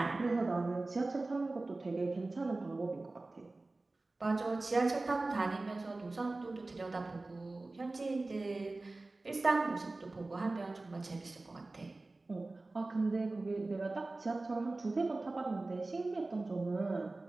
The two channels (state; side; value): quieter; left; 3.2 dB